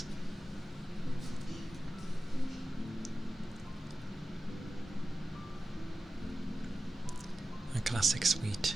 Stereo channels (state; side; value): normal; both; correlation 0.94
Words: A classic sweet.